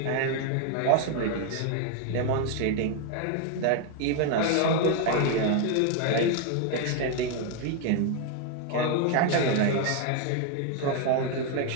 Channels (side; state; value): both; different; correlation 0.01